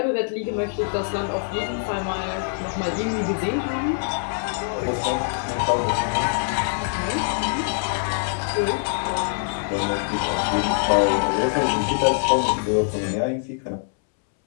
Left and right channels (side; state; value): right; silent; 63 dB below the other